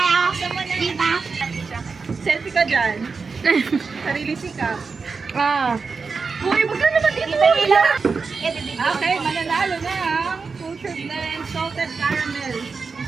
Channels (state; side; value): quieter; left; 4.8 dB